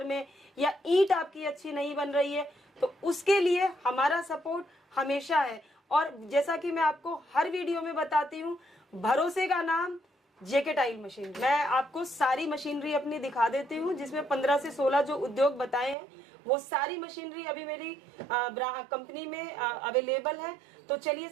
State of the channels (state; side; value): drops out; left; at 16.0 s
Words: में, या ईंट आपकी अच्छी नहीं बन रही है, तो उसके लिए हमारा सपोर्ट हमेशा है। और जैसा कि मैं आपको हर वीडियो में बताती हूँ, भरोसे का नाम जेके टाइल मशीन। मैं आपको सारी मशीनरी अपनी दिखा देती हूँ, जिसमें 15 से 16 जो उद्योग बताए हैं, वो सारी मशीनरी अभी मेरी कंपनी में अवेलेबल है। तो चलिए